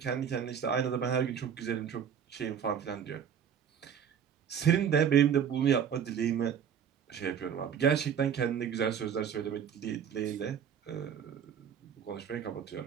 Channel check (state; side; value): quieter; left; 8.1 dB